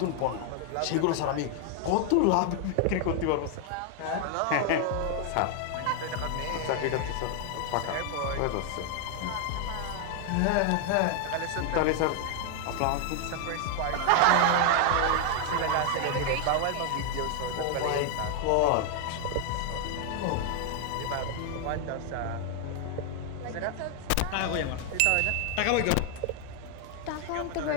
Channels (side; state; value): both; different; correlation 0.00